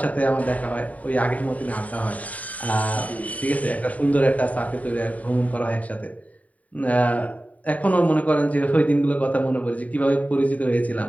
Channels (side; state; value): right; late; 0.070 ms